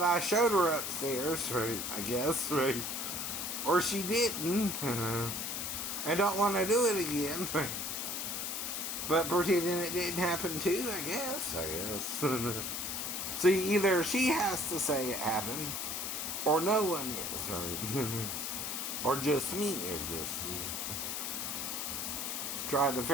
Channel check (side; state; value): left; noise; hiss, 3 dB below the sound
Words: I showed her upstairs, right, I guess, right? Or she didn't. And don't want to do it again, right? But pretending it didn't happen too, I guess. See, either she has to say it happened, or no one is, right? Or just me, or just you. Trying to